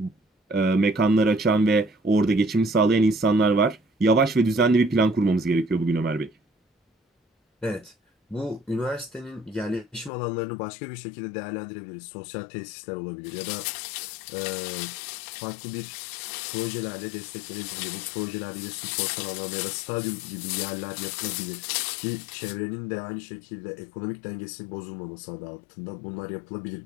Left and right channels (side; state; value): right; drops out; at 10.1 s